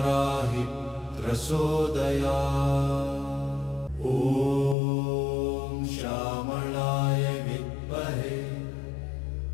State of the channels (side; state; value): right; drops out; at 4.8 s